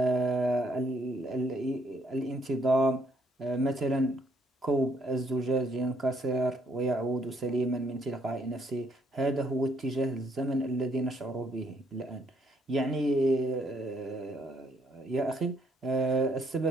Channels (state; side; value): normal; both; correlation 0.69